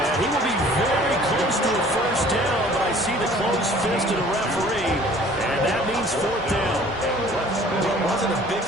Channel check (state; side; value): normal; both; correlation 0.52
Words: he will be very close to a first down, but I see the closed fist of the referee, and that means 4th down. Well, it wasn't a big